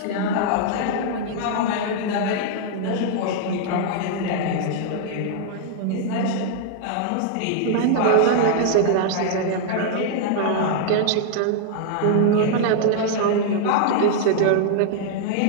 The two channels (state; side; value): different; both; correlation -0.01